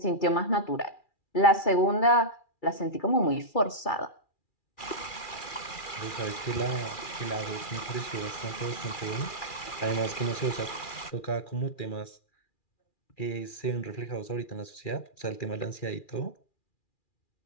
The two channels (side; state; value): right; late; 2.4 ms